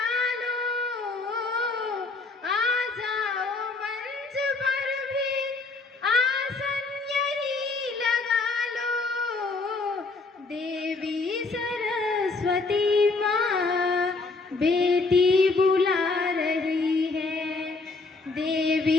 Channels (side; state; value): right; quieter; 3.8 dB